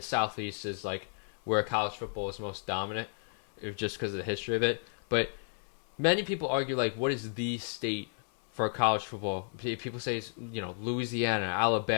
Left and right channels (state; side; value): silent; right; digital silence